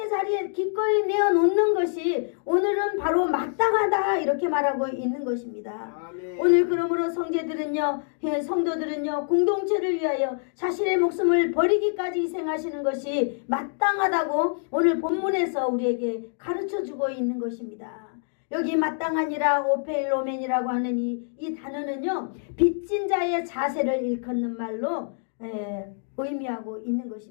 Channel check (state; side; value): silent; right; digital silence